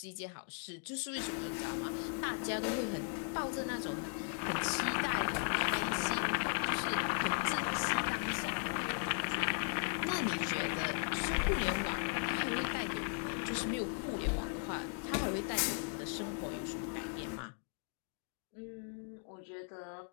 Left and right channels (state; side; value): silent; right; 53 dB below the other